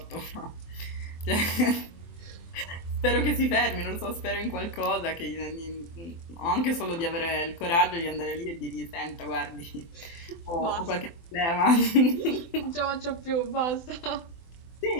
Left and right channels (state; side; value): late; right; 24 ms